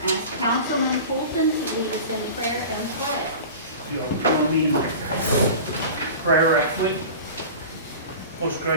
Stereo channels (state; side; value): inverted; both; correlation -0.35